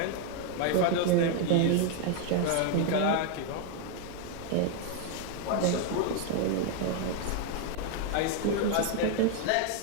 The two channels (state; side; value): different; both; correlation 0.01